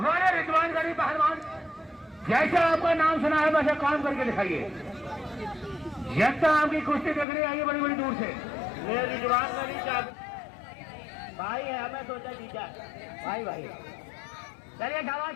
रिजवान गरी पहलवान, जैसा आपका नाम सुना है वैसे काम करके दिखाइए। जनता आपकी कुश्ती देखने आई है बड़ी बड़ी दूर से। ये रिजवान गरी भाई है, हमें सोचा जीता भाई भाई। चलिए शाबाश,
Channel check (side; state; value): right; drops out; at 7.2 s